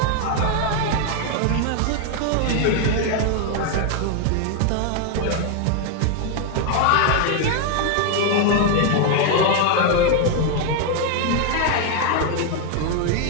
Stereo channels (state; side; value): different; both; correlation 0.01